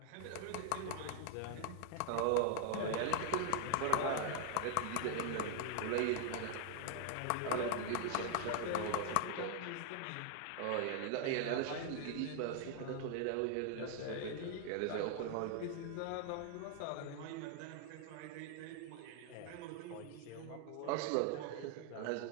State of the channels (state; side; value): different; both; correlation 0.00